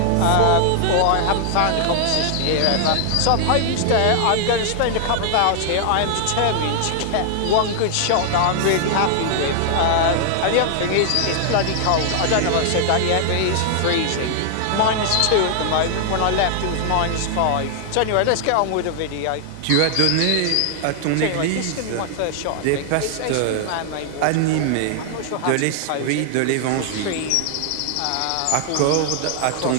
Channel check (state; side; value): different; both; correlation 0.00